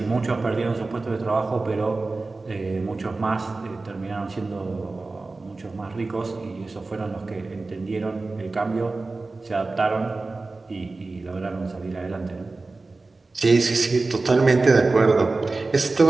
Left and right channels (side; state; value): left; quieter; 3.5 dB